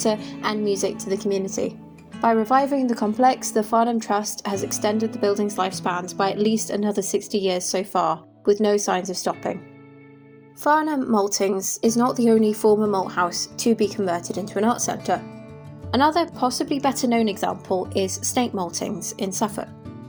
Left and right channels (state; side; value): identical; both; correlation 1.00